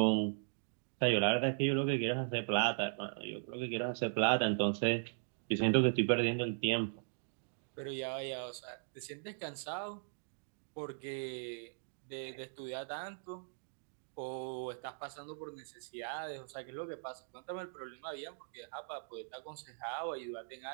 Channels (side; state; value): left; silent; digital silence